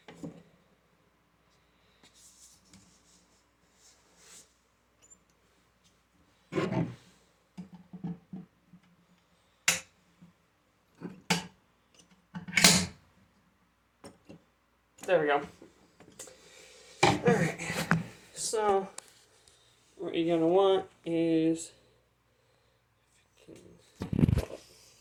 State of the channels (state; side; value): identical; both; correlation 1.00